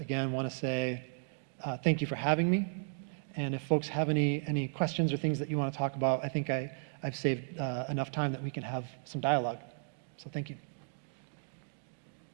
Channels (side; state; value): left; silent; 55 dB below the other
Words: want to say thank you for having me. And if folks have any questions or things that you want to talk about, I think I've saved enough time that we can have some dialogue. So thank you.